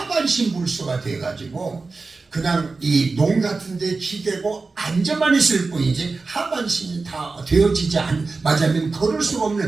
불수가 돼가지고 그냥 이 농 같은 데 기대고 앉아만 있을 뿐이지 하반신이 다 되어지지 맞으면 걸을 수가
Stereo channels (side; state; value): left; quieter; 4.0 dB